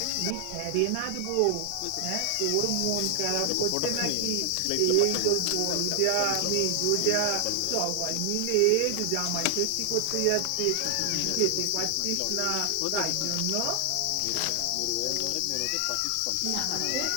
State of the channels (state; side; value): different; both; correlation 0.00